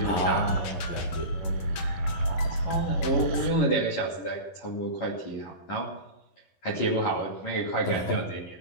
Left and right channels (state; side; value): late; right; 11 ms